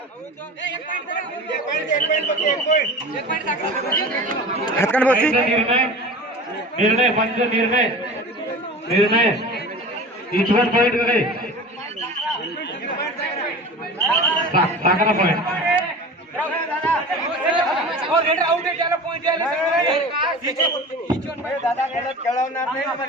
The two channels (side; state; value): both; normal; correlation 0.35